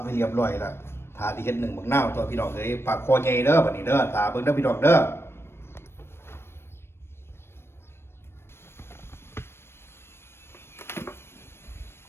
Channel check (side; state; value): right; late; 0.12 ms